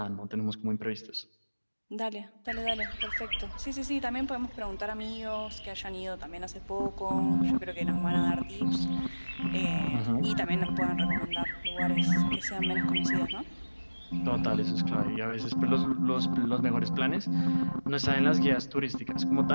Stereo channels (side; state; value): both; inverted; correlation -1.00